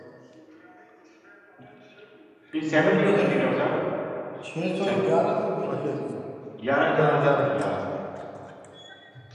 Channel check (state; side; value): identical; both; correlation 1.00